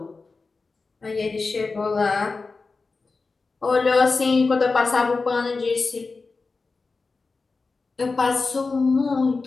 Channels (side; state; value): right; quieter; 4.1 dB